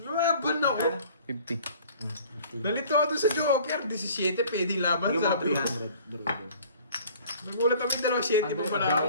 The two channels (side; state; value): both; inverted; correlation -0.50